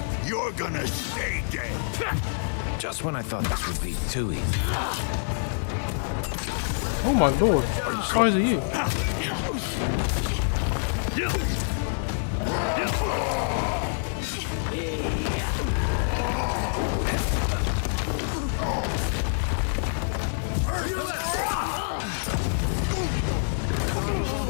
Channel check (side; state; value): right; silent; 61 dB below the other